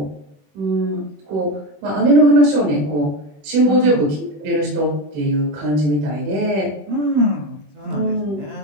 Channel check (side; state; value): left; late; 20 ms